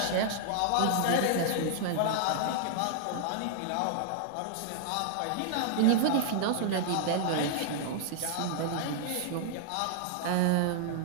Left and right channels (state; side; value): different; both; correlation -0.01